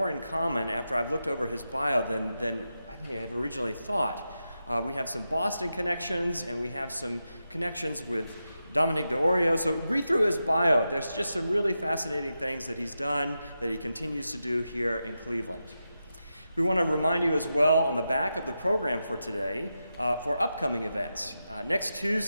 in common after I've looked over his bio than I may have originally thought. We have some Boston connections, and we have some connections with Dominic D'Orio. So read through his bio. There's just some really fascinating things that he's done, that he continues to do here in Cleveland. We want to remind you as well on the back of the program for today for upcoming events. Next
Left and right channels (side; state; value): both; inverted; correlation -0.89